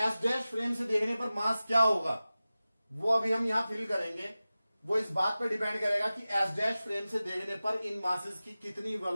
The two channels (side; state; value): both; inverted; correlation -0.96